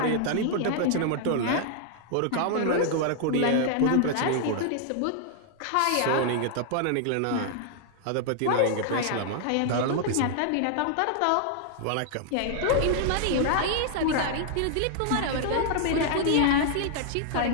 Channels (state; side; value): different; both; correlation -0.01